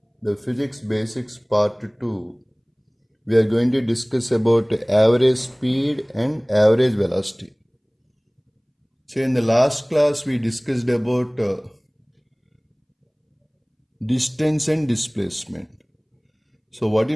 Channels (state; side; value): identical; both; correlation 1.00